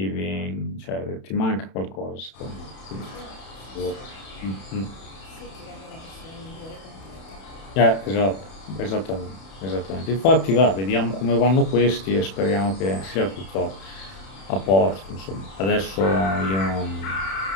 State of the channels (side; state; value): right; late; 31 ms